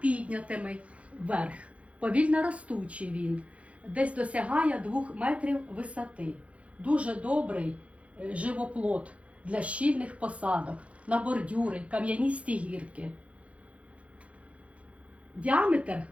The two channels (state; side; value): late; left; 0.063 ms